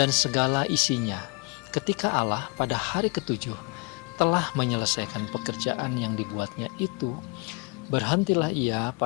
dan segala isinya ketika Allah pada hari ketujuh telah menyelesaikan pekerjaan yang dibuatnya itu. Berhentilah ia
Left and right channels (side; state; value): right; quieter; 29.6 dB